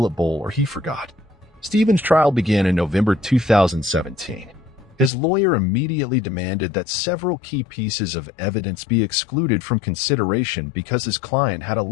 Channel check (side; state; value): right; drops out; at 5.1 s